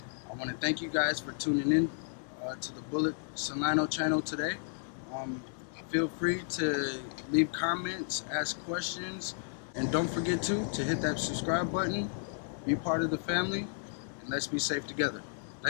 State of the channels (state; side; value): silent; right; 56 dB below the other